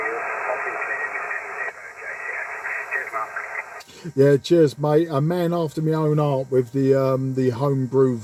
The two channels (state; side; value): identical; both; correlation 1.00